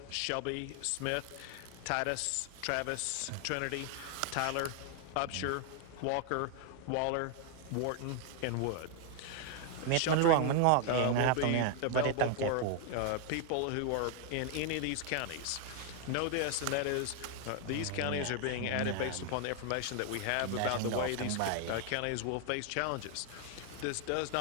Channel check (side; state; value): both; different; correlation 0.00